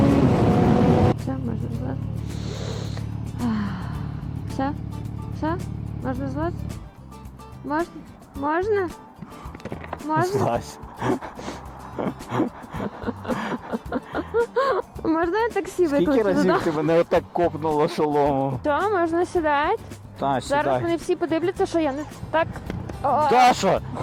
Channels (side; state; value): both; identical; correlation 1.00